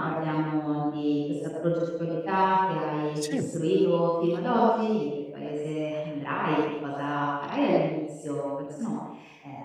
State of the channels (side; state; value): both; identical; correlation 1.00